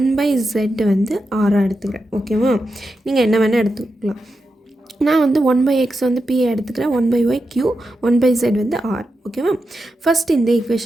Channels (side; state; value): both; normal; correlation 0.88